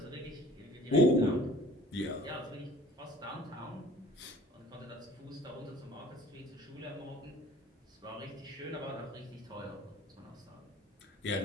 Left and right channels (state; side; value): normal; both; correlation 0.49